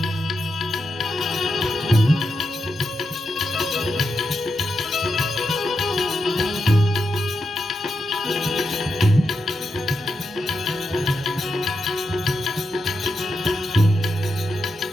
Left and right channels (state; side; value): normal; both; correlation 0.86